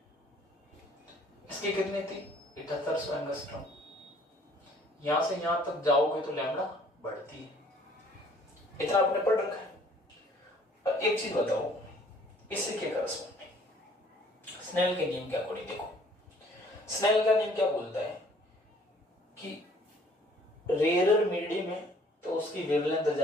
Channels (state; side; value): normal; both; correlation 0.58